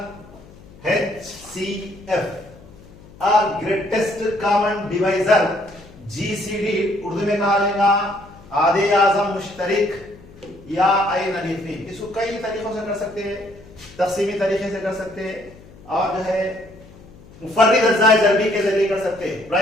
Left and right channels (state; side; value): noise; left; hum, 22 dB below the sound